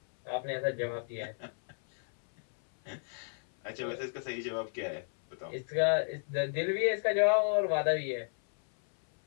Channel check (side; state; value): right; silent; 56 dB below the other